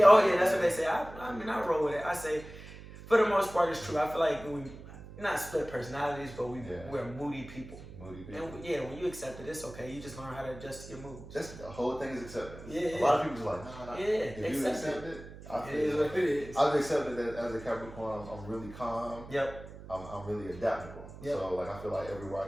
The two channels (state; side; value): noise; right; hum, 15 dB below the sound